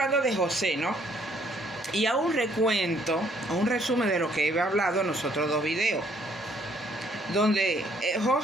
de José, ¿no? Y a un recuento, a un resumen de lo que he hablado en los otros dos videos, donde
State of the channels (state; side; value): normal; both; correlation 0.65